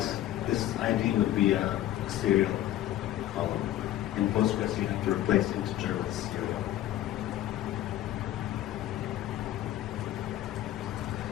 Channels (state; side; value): quieter; right; 13.5 dB